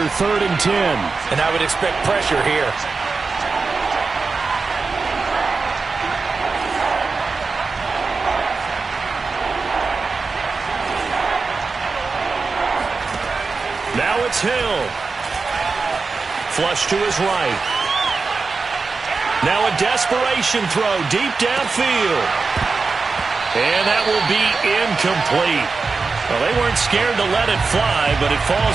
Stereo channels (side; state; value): left; quieter; 4.4 dB